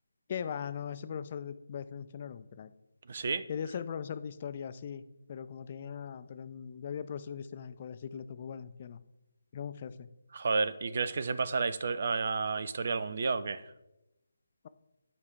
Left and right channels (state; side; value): inverted; both; correlation -0.82